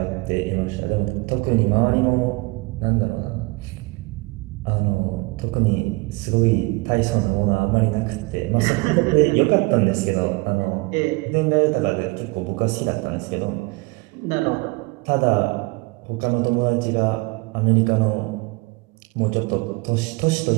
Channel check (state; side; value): quieter; left; 25.8 dB